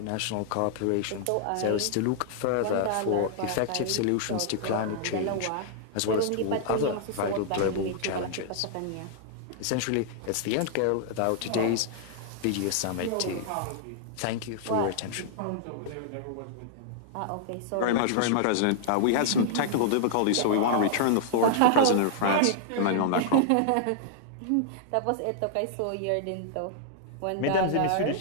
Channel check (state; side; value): different; both; correlation -0.01